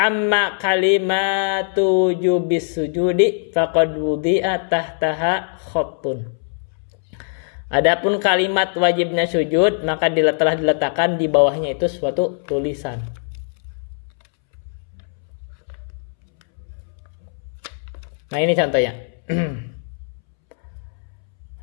kalimatu jubis sujudi faqad wudi'a tahtaha khattun. Adapun kalimat wajibnya sujud, maka telah diletakkan di bawahnya itu suatu tulisan. Nah, ini contohnya.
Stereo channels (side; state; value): right; silent; 65 dB below the other